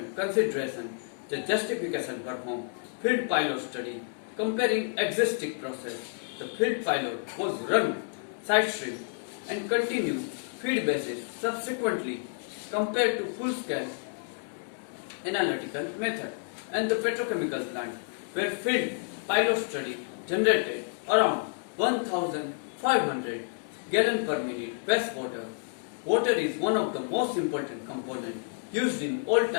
considerations. The justification performed field pilot study comparing existing process. The field pilot was run side stream and continued feed basis subsequently compared to full-scale analytical method and the petrochemical plant where field pilot study generated around 1500 gallon per minute wastewater. Water is one of the most important components used in all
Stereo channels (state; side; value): silent; right; 58 dB below the other